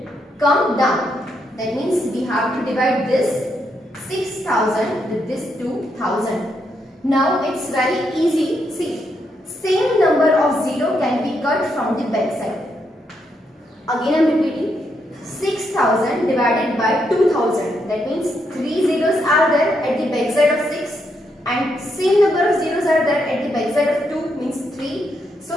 come down. That means we have to divide this 6000 with this 2000. Now it's very easy. See, same number of 0 can be cut from the back side. Again I am repeating, 6000 divided by 2000. That means 3 zeros are there at the back side of 6 and same number of zeros are there at the back side of 2 means 3.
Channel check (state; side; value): normal; both; correlation 0.79